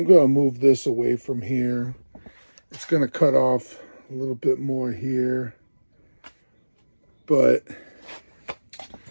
going to move this away from here. It's going to cut off a little bit more here, but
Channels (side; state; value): both; inverted; correlation -1.00